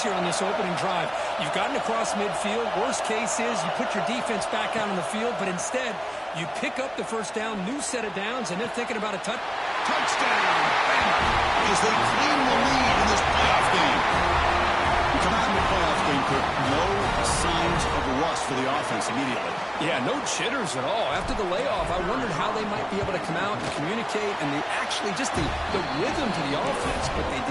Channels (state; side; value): identical; both; correlation 1.00